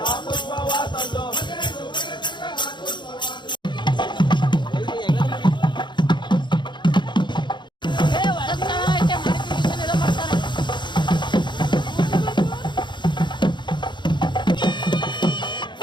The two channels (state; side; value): late; right; 0.22 ms